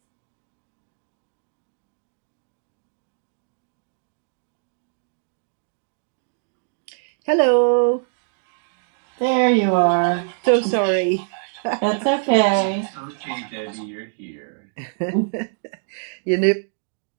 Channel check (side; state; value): left; silent; digital silence